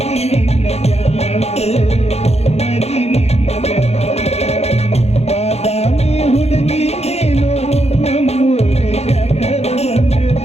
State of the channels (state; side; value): late; right; 0.31 ms